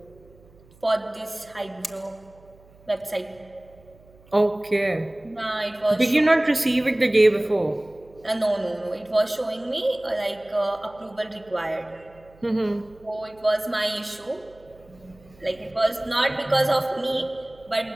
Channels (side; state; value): right; noise; hum, 27 dB below the sound